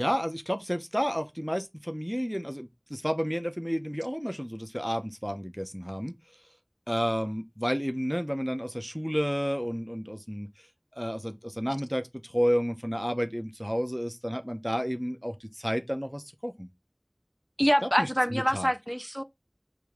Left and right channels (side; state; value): both; identical; correlation 1.00